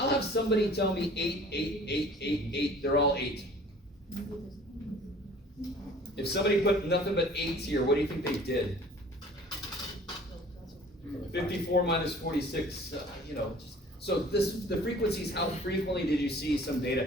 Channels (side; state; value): both; normal; correlation 0.49